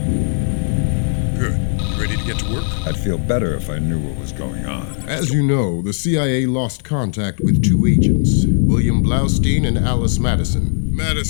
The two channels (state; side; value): silent; right; digital silence